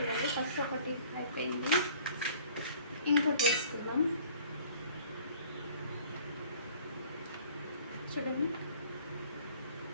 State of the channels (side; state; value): both; inverted; correlation -0.53